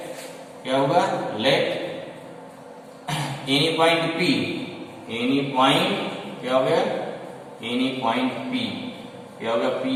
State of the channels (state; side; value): identical; both; correlation 1.00